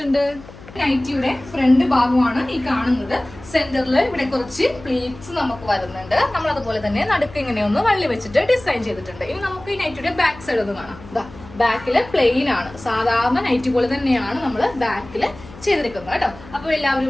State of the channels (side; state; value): left; noise; hum, 18 dB below the sound